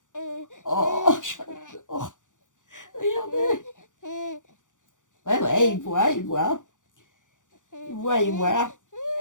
Oh, j'adore. Regardez. Ouais, il voit. Il voit.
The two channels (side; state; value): right; late; 0.87 ms